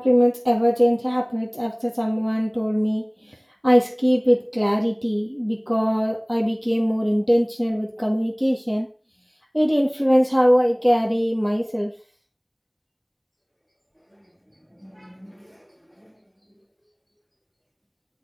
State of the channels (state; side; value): identical; both; correlation 1.00